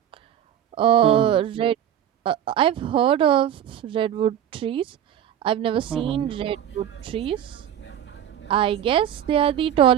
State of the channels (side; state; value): left; quieter; 10.3 dB